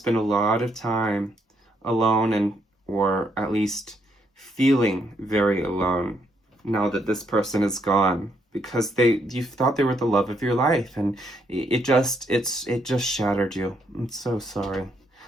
a lot of time alone, or at least feeling very alone now that this person is gone, because you thought they were the love of your life, and it just shattered you. I'm so sorry.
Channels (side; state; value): both; normal; correlation 0.73